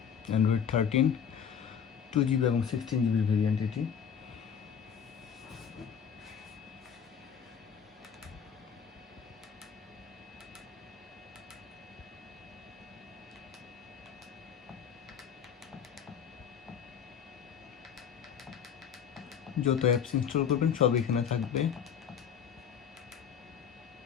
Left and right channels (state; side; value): quieter; right; 7.8 dB